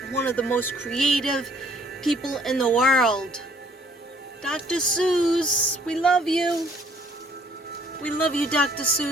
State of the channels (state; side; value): normal; both; correlation 0.61